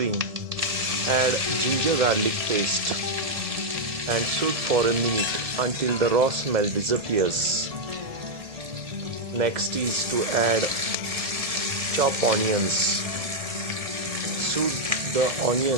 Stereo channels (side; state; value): left; late; 1.7 ms